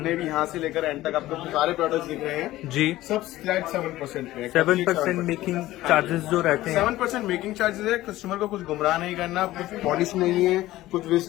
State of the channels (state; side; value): quieter; right; 16.1 dB